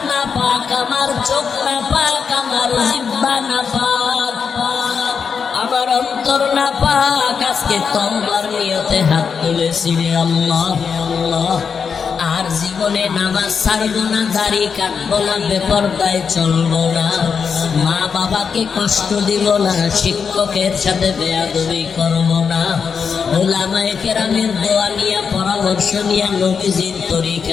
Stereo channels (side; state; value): right; quieter; 6.2 dB